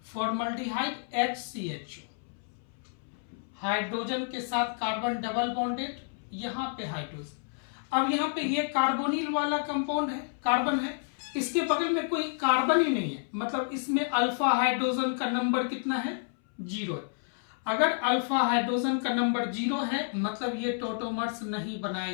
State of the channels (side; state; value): right; silent; 58 dB below the other